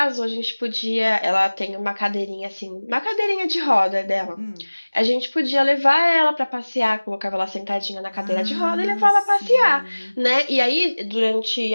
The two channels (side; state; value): both; inverted; correlation -1.00